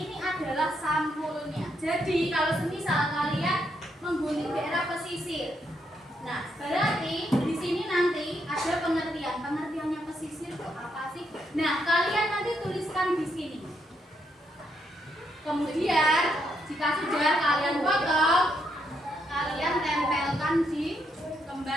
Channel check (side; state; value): both; normal; correlation 0.77